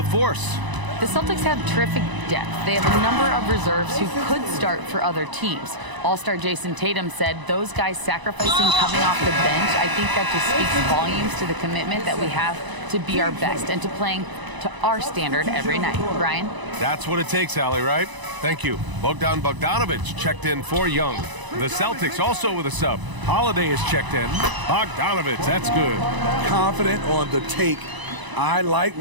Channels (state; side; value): late; left; 1.0 ms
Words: The Celtics have terrific depth. They have a number of reserves who could start for other teams. All-star Jason Tatum said those guys sacrificing coming off the bench, I think that just speaks volumes to the commitment that we have to be our best and to playing to our standard every night. Brian? That's what it takes, Allie, right? Thank you. Bogdan Bogdanovic checked in for Young. The Celtics also with a sub. Holiday is checked in. Bogdanovic, that's good. Confident on the take. I like